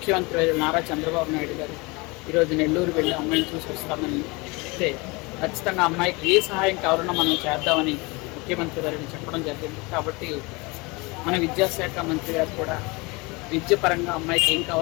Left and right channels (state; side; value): quieter; right; 26.1 dB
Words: నారా చంద్రబాబు నాయుడు గారు ఈరోజు నెల్లూరు వెళ్ళి అమ్మాయిని చూసి వస్తామని చెప్తే ఖచ్చితంగా అమ్మాయికి ఏ సహాయం కావాలన్నా మనం చేద్దామని ముఖ్యమంత్రి గారిని చెప్పడం జరిగింది. కాబట్టి మన విద్యాశాఖ మంత్రి గారు కూడా విద్యపరంగా అమ్మాయికి ఏం